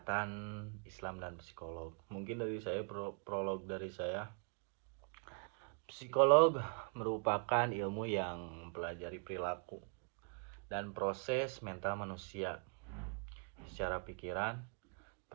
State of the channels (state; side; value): quieter; left; 38.9 dB